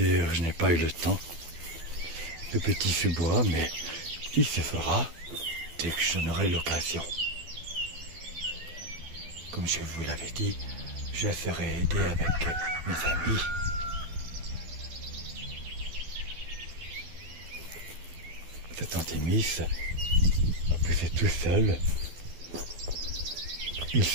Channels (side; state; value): left; late; 12 ms